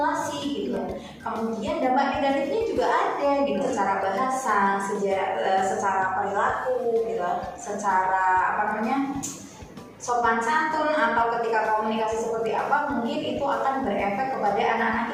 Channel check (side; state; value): both; identical; correlation 1.00